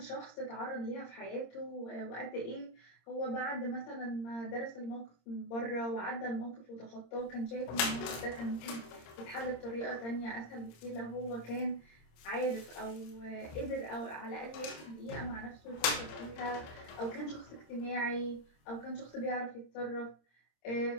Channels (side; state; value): right; late; 26 ms